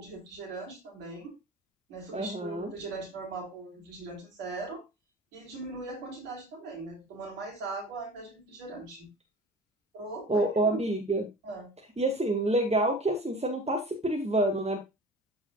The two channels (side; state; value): both; normal; correlation 0.38